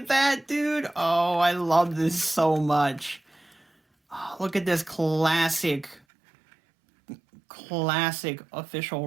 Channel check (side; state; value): left; drops out; at 6.0 s